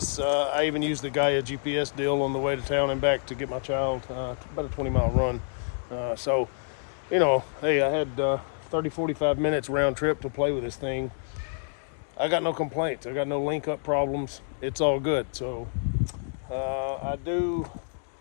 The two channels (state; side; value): silent; right; digital silence